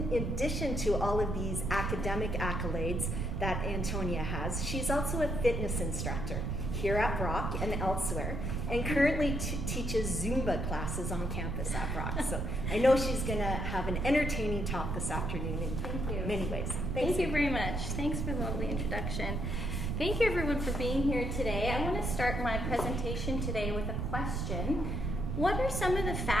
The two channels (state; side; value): noise; right; rumble, 1 dB below the sound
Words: addition to all of these academic accolades that Antonia has, she's also a fitness instructor here at Brock and elsewhere, and currently teaches Zumba classes on campus at Brock. So I know she's going to have an entertaining talk this afternoon in many ways. Thank you very much. Thanks for the lovely introduction. Thank you, everyone, for being here today. I want to start my presentation today with a question. What are some of the